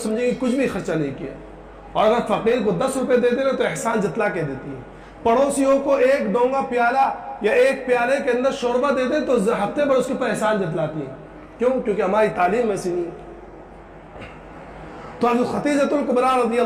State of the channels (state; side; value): identical; both; correlation 1.00